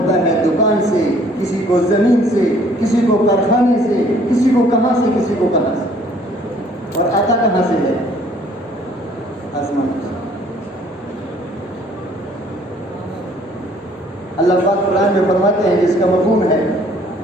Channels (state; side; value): normal; both; correlation 0.59